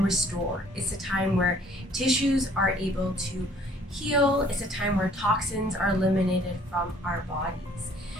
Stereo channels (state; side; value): normal; both; correlation 0.57